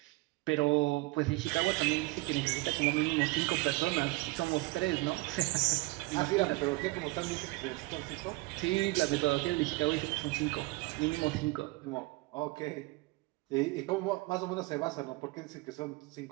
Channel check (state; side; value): quieter; left; 22.7 dB